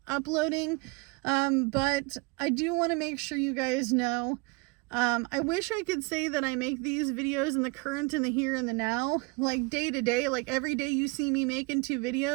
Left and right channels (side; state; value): left; quieter; 27.8 dB